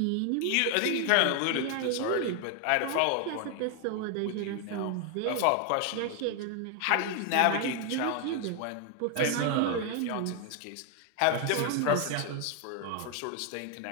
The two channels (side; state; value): both; different; correlation 0.00